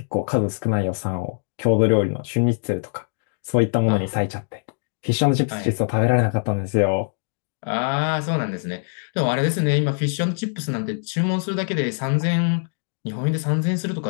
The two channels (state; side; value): silent; right; digital silence